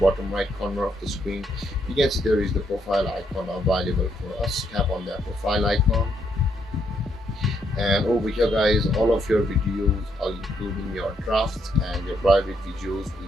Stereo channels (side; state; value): both; normal; correlation 0.75